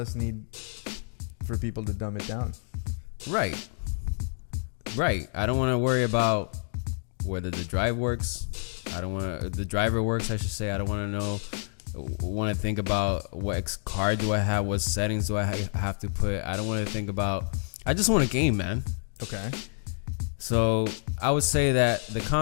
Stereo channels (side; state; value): right; silent; digital silence